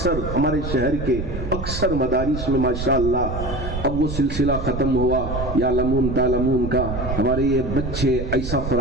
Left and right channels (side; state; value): right; noise; rumble, 5 dB below the sound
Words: ہمارے شہر کے اکثر مدارس میں ماشاءاللہ اب وہ سلسلہ ختم ہوا یا لمون تالمون کا، ہمارے یہ بچے ایسا